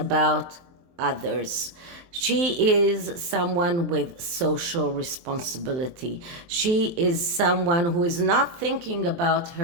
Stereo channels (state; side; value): late; left; 23 ms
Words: others. She is someone with social responsibility. She is someone who is not thinking about